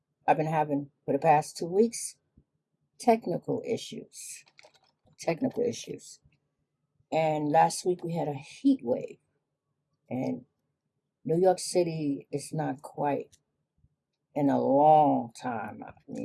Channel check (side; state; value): both; identical; correlation 1.00